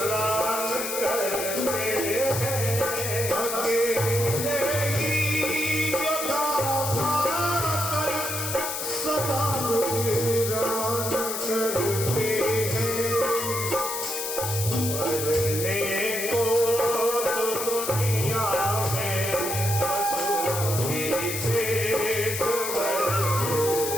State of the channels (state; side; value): noise; left; hiss, 4 dB below the sound